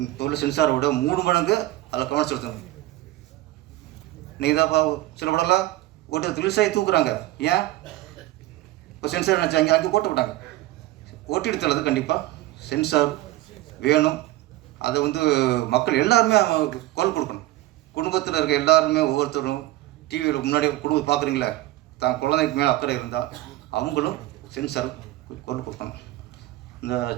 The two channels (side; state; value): left; quieter; 16.9 dB